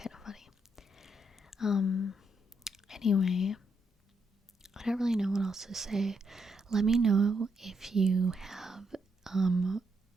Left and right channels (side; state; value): both; normal; correlation 0.78